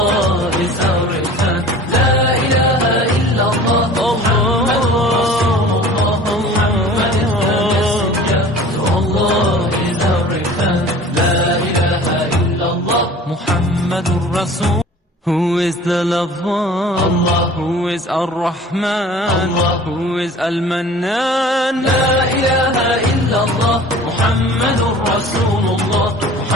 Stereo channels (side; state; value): both; normal; correlation 0.44